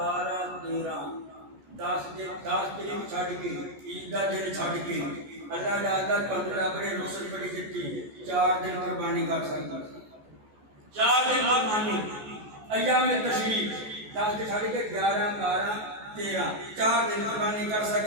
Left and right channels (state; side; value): late; left; 14 ms